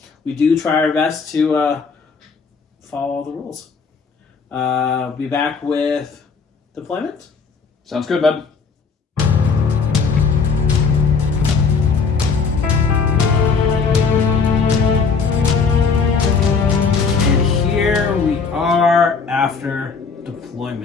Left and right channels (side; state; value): right; quieter; 5.2 dB